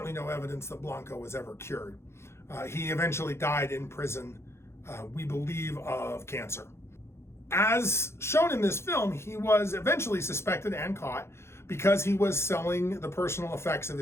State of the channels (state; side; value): late; right; 0.13 ms